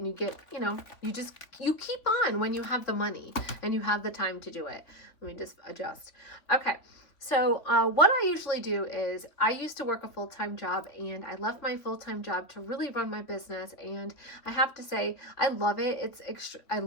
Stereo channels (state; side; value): late; right; 3.2 ms